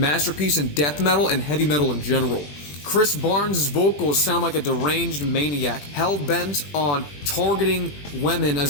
in death metal and heavy metal in general. Chris Barnes' vocals sound like a deranged maniac, hell-bent on targeting women as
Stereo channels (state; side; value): late; right; 21 ms